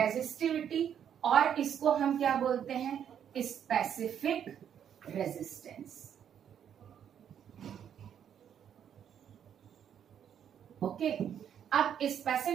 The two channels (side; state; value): left; quieter; 8.9 dB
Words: और इसको हम क्या बोलते हैं? Specific resistance. ओके, अब